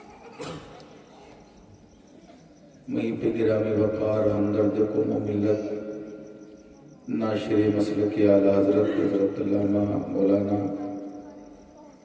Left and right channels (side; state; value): both; identical; correlation 1.00